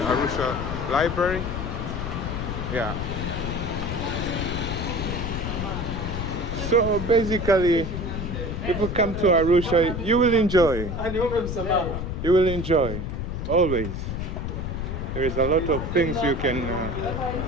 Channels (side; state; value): left; noise; rumble, 4 dB below the sound